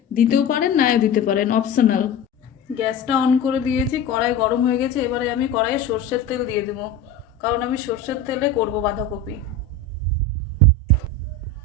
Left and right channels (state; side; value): quieter; right; 3.7 dB